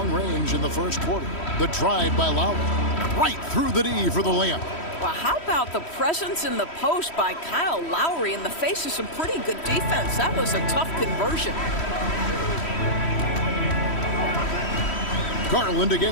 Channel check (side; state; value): right; late; 3.1 ms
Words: range in the first quarter. The drive by Lowry. Right through the D for the layup. Well, how about the presence in the post by Kyle Lowry in the face of some pretty good defense? That was a tough conversion. Garland